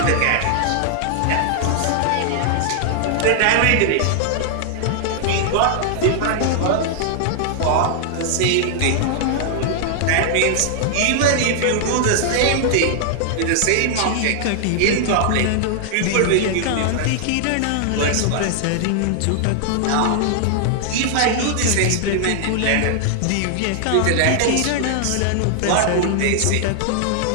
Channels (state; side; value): different; both; correlation -0.01